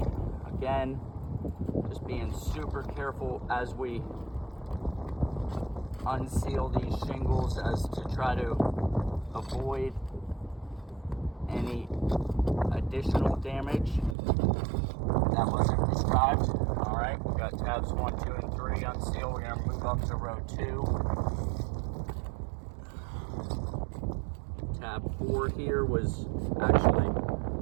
Again, just being super careful as we unseal these shingles as to try to avoid any additional damage that wasn't prescribed. All right, we got tabs 1, 2, and 3 unsealed. We're gonna move up to row 2. Tab 4 here was actually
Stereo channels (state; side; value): drops out; left; at 14.2 s